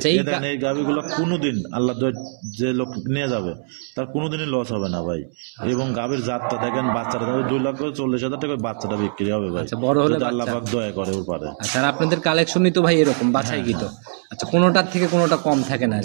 এই দেখেন এই গাভীগুলো কোনোদিন আল্লাহ দোয়ায় যে লোক নিয়ে যাবে তার কোনোদিনই লস হবে না ভাই। এবং গাভীর জাতটা দেখেন, বাচ্চাটা 2,40,000 টাকা বাচ্চাটা বিক্রি হবে ভাই, বড় হলে যদি আল্লাহ পাক দয়া করে ওর পারে। আচ্ছা, আর আপনাদের কালেকশনই তো ভাই এরকম বাছাই কি তো? আচ্ছা, কোনোটার থেকে কোনোটা কম থাকে না?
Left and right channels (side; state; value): left; silent; 64 dB below the other